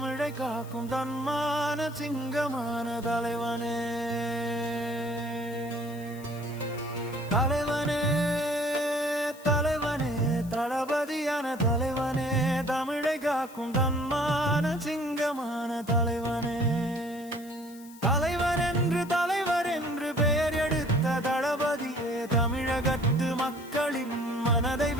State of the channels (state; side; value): noise; left; hiss, 21 dB below the sound